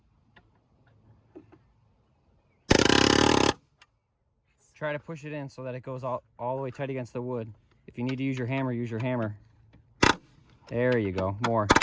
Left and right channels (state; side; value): identical; both; correlation 1.00